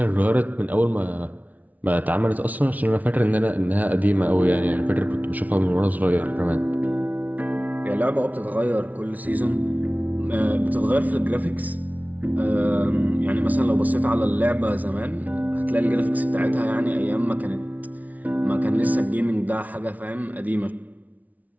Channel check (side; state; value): left; late; 0.074 ms